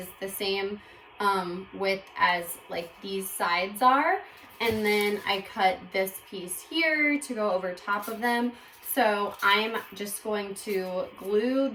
the same width as like these sides are. And then I cut this piece here to go over top of them. So I'm just going to glue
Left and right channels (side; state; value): both; identical; correlation 1.00